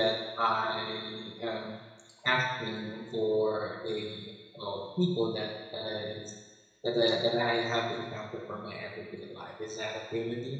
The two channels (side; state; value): both; identical; correlation 1.00